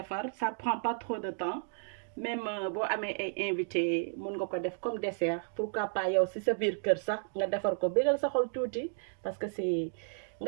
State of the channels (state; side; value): silent; left; digital silence